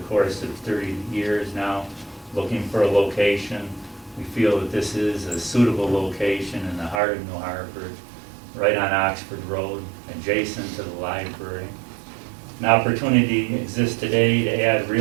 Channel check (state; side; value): drops out; left; at 7.0 s